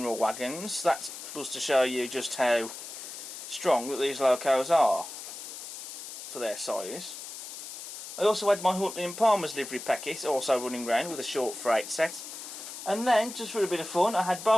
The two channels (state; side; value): noise; left; hiss, 10 dB below the sound